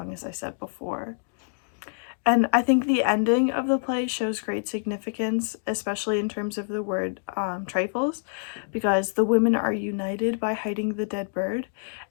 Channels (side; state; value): right; silent; digital silence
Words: as I said before. And I think the ending of the play shows great significance, especially in terms of the word trifles, because the women are united by hiding the dead bird.